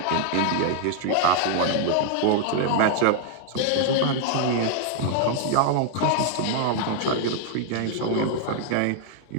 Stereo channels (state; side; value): different; both; correlation 0.00